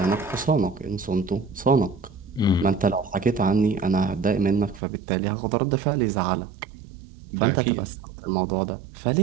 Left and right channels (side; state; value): left; drops out; at 4.8 s